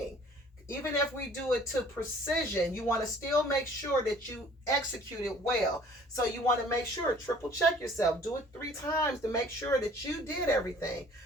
Even if we do it to precision, you want to still make sure that you execute it well. So you want to make sure, triple check yourself. Do it 3 times to make sure that you did everything.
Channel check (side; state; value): both; normal; correlation 0.53